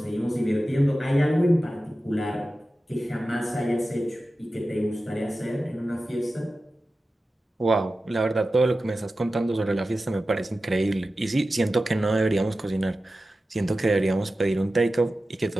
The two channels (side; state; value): both; normal; correlation 0.94